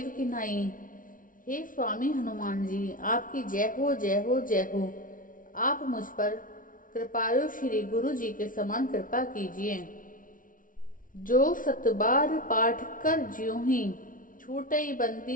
की नाई। हे स्वामी हनुमान जी, आपकी जय हो जय हो जय हो। आप मुझ पर कृपालु श्री गुरु जी के समान कृपा कीजिए। जो सतबार पाठ कर ज्यों ही, छूटई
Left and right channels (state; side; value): late; right; 0.39 ms